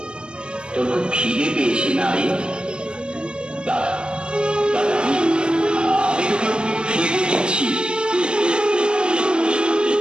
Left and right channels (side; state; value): left; late; 0.053 ms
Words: তোর খুব খিদে পেয়েছে না রে? দাদা, দাদা, আমি তোকে খেতে দিচ্ছি।